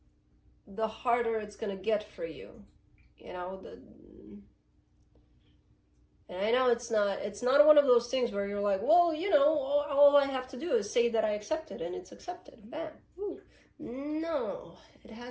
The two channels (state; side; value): identical; both; correlation 1.00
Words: the harder it's going to get for you. You know, and I know it's not one of those things where you're like, well, you know, all I have to do is say that I accept it and it's accepted. Bam. Ooh. No, it